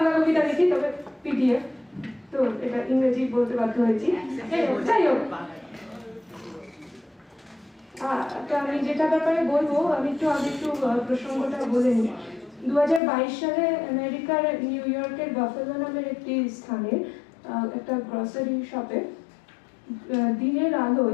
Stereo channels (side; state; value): right; drops out; at 13.0 s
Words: কবিতা লিখি, তবে পিডিএফ, তো এটা ইংরেজি বলতে বাধ্য হয়েছি। যাই হোক, তো আমি যেটা ব্যাপারে বলবো, আমি একটু প্রসঙ্গটা বলে নিই। 2022 সালে আমেরিকার নিউ ইয়র্কের বাফেলো নামের একটি স্থানে একটা গ্রসারি শপে দিনের